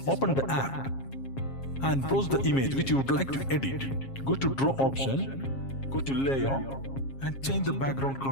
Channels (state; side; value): late; right; 7.4 ms